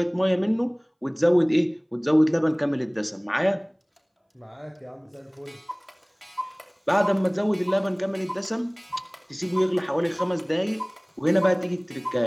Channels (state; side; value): identical; both; correlation 1.00